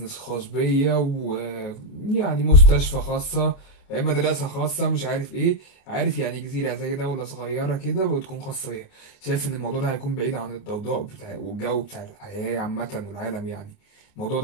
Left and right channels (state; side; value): late; right; 28 ms